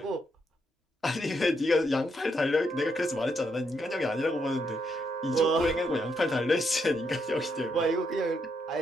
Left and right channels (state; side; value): normal; both; correlation 0.78